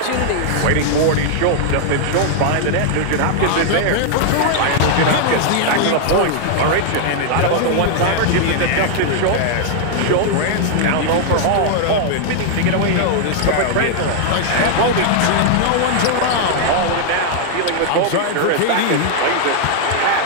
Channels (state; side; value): different; both; correlation 0.00